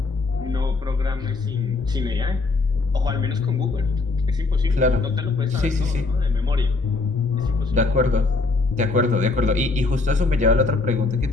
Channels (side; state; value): right; quieter; 3.7 dB